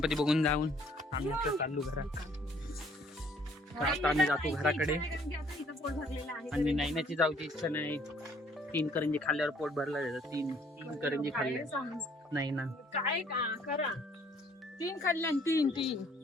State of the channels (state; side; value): normal; both; correlation 0.61